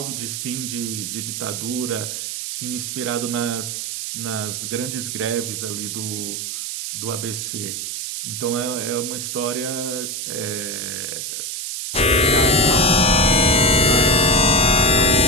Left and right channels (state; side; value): noise; right; hiss, 5 dB below the sound